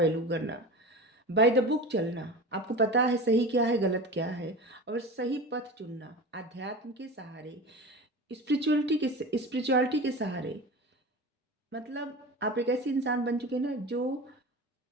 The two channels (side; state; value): both; normal; correlation 0.31